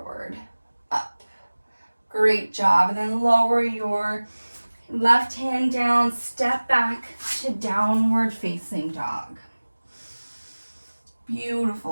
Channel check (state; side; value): inverted; both; correlation -1.00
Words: up. Great job. And then lower your left hand down, step back to downward facing dog.